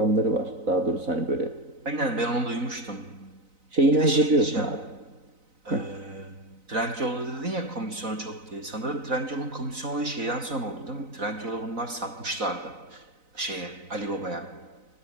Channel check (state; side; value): late; left; 4.0 ms